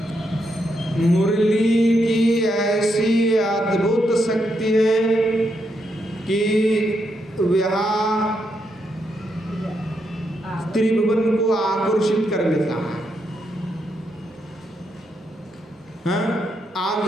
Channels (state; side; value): normal; both; correlation 0.80